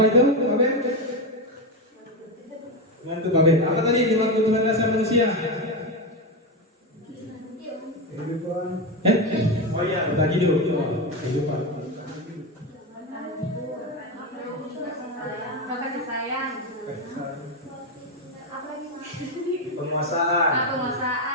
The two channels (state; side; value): normal; both; correlation 0.13